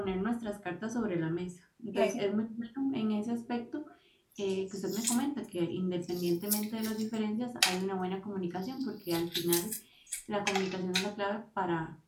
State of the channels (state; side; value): identical; both; correlation 1.00